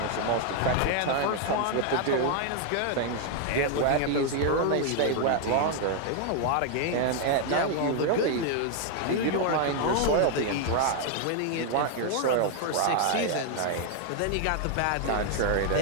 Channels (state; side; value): different; both; correlation 0.00